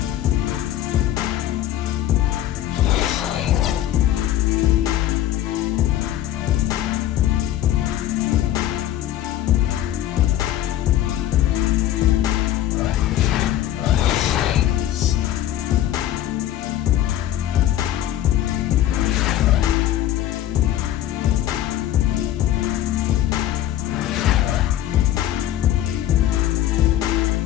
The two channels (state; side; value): quieter; right; 12.7 dB